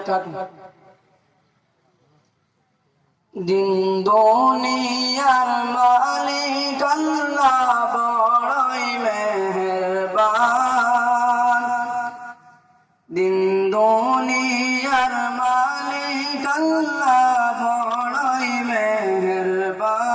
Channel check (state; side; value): identical; both; correlation 1.00